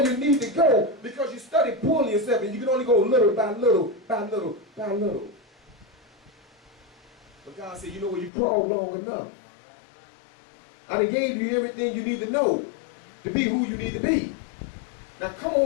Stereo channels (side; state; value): right; drops out; at 8.3 s